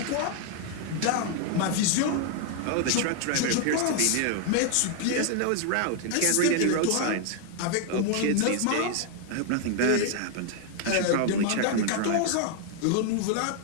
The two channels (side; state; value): both; different; correlation 0.00